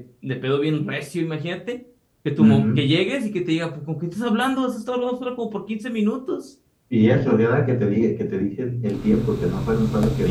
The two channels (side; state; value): both; identical; correlation 1.00